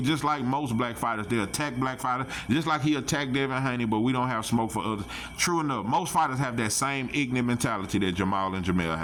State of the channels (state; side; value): identical; both; correlation 1.00